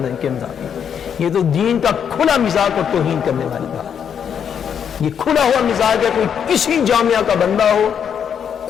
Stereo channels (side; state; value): right; quieter; 7.9 dB